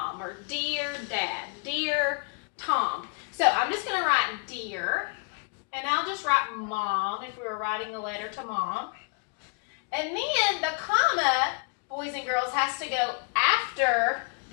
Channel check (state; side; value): quieter; right; 33.7 dB